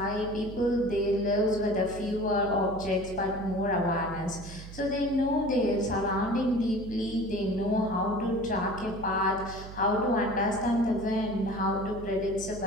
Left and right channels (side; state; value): right; noise; hum, 13 dB below the sound